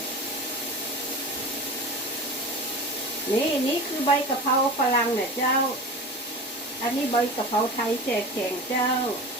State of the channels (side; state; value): both; normal; correlation 0.32